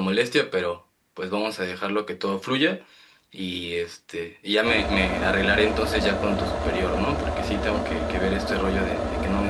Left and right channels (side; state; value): both; identical; correlation 1.00